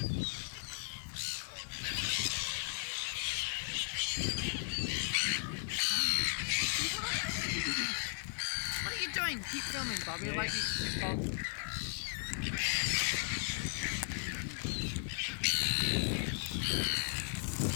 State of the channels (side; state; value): right; silent; digital silence